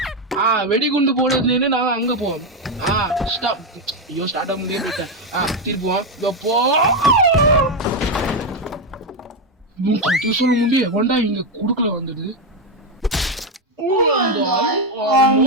வெடிகுண்டு போடுறதுல நாங்க அங்க போவோம். ஸ்டாப். ஐயோ ஸ்டார்ட் ஆக முடியாது போயிட்டேன். திருப்புவோம். எப்போ சொல்ல முடிய வண்டா இங்க குடுக்கல வந்துடுது.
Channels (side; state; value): both; normal; correlation 0.07